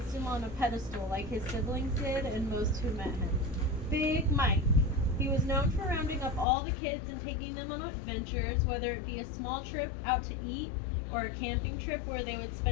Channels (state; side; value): drops out; right; at 6.5 s